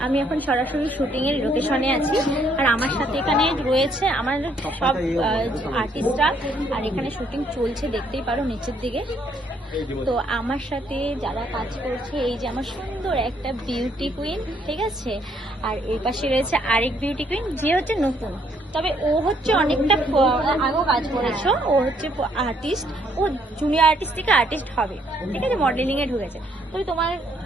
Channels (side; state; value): both; normal; correlation 0.68